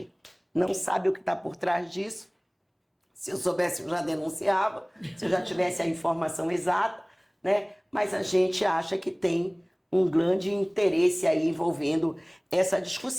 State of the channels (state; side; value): identical; both; correlation 1.00